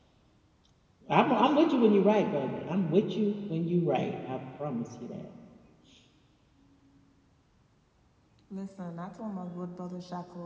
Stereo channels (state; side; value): identical; both; correlation 1.00